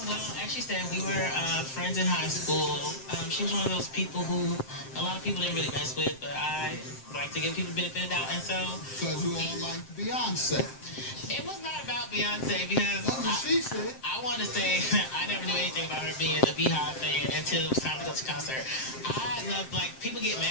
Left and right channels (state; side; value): late; right; 7.6 ms